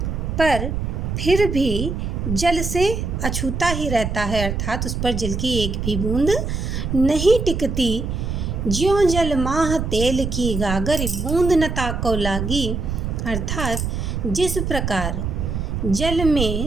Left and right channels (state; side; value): noise; right; rumble, 2 dB below the sound